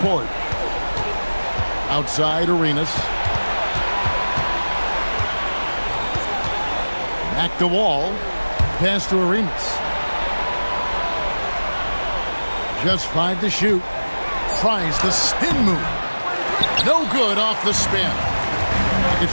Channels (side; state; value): both; inverted; correlation -1.00